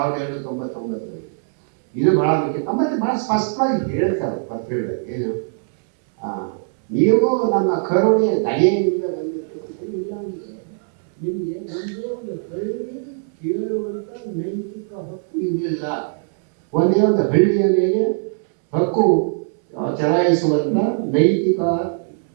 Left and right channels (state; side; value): silent; left; 65 dB below the other